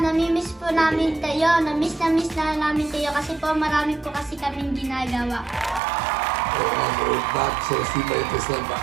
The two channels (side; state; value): left; drops out; at 5.8 s